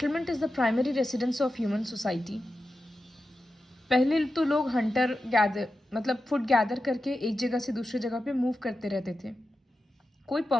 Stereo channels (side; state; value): both; normal; correlation 0.91